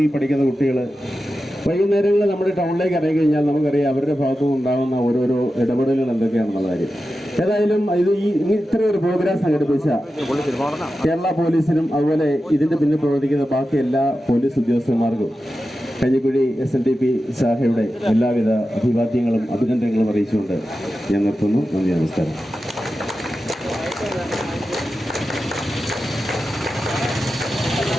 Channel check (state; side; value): normal; both; correlation 0.92